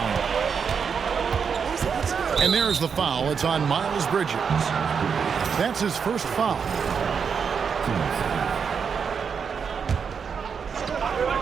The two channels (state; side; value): quieter; left; 6.4 dB